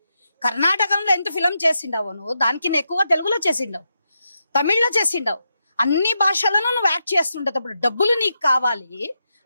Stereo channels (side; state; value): both; inverted; correlation -0.85